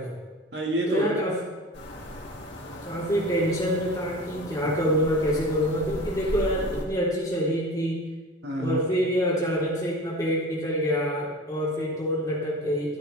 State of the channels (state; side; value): normal; both; correlation 0.36